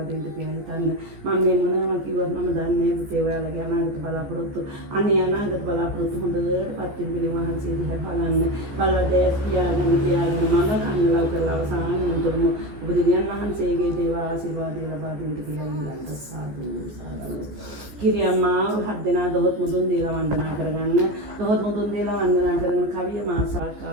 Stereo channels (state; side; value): late; left; 14 ms